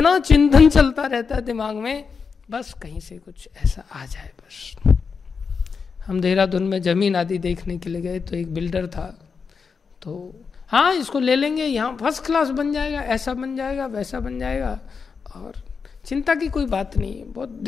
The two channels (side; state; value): right; quieter; 5.5 dB